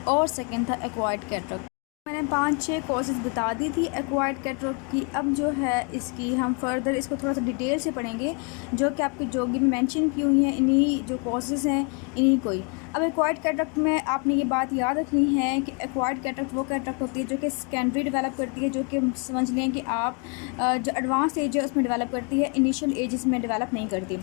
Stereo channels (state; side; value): quieter; right; 35.2 dB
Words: और सेकंड था एक्वायर्ड कैटरेक्ट। मैंने 5-6 कोर्सेज बता दी थी एक्वायर्ड कैटरेक्ट की। अब जो है इसकी हम फर्दर इसको थोड़ा सा डिटेल से पढ़ेंगे, जो कि आपके जोगी में मेंशन की हुई हैं, इन्हीं जो कोर्सेज हैं इन्हीं को ही। अब एक्वायर्ड कैटरेक्ट में आपने ये बात याद रखनी है कि एक्वायर्ड कैटरेक्ट वो कैटरेक्ट होती है जो कि सेकेंडरी डेवलप करती है, जो कि समझ लें कि आप जो एडवांस एज है उसमें डेवलप करती है, इनिशियल एज में डेवलप नहीं करती।